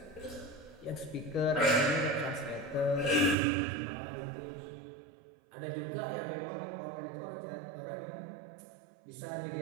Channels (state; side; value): drops out; left; at 3.4 s